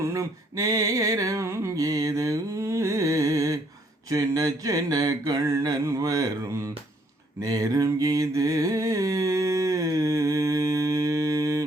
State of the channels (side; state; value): both; normal; correlation 0.67